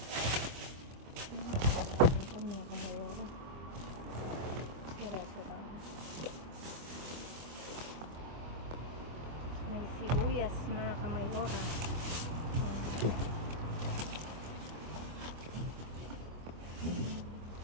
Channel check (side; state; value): left; late; 24 ms